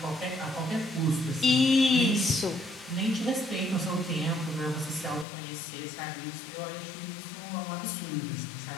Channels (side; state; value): right; drops out; at 5.2 s